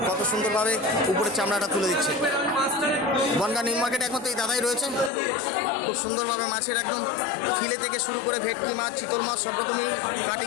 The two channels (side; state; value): right; drops out; at 5.1 s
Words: কত সুন্দরভাবে উপরে চামড়াটা তুলে দিচ্ছে। বনগাঁ নিউ মার্কেট একমাত্র এই দাদাই রয়েছে। খুব সুন্দরভাবে মাছের একদম ফিলে থেকে শুরু করে ভেটকি মাছ, চিতল মাছ সব রকমই